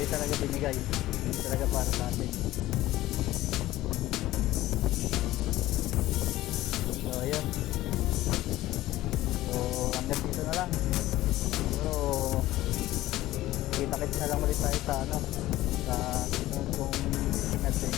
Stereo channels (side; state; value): right; quieter; 16.0 dB